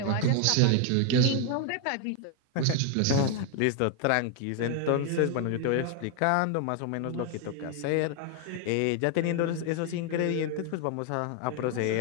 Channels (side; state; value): both; different; correlation 0.00